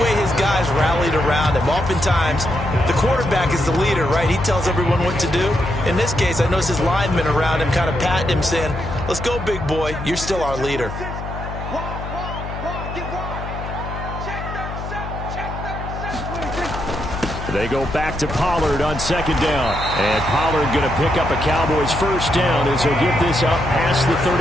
his guys rallied around him. Oftentimes, the quarterback is the leader, right? He tells everyone what to do. In this case, I noticed his linemen around him kind of patting him, saying, let's go, big boy. You're still our leader. They go back to Pollard on second down. And Pollard going to pick up a Cowboys first down as he'll get this up past the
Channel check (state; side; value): noise; left; hum, 8 dB below the sound